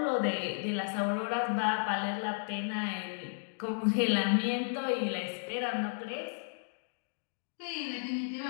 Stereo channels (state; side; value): silent; right; digital silence